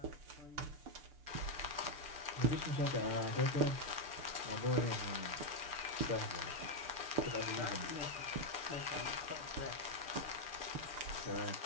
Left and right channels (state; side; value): late; left; 6.8 ms